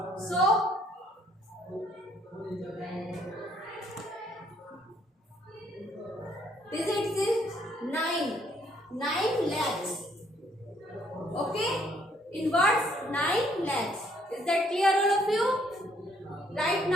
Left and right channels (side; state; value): both; normal; correlation 0.66